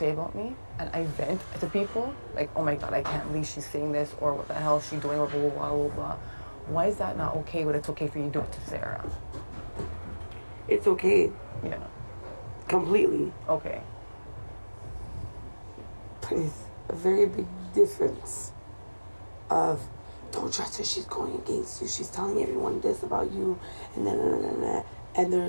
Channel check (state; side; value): inverted; both; correlation -1.00